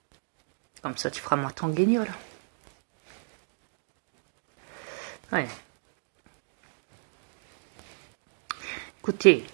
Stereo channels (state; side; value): silent; left; digital silence